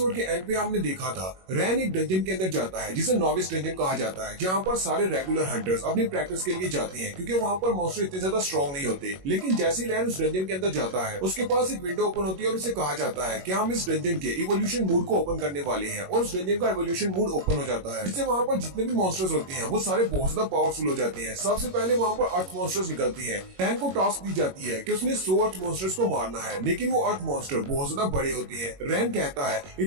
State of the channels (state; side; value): late; left; 21 ms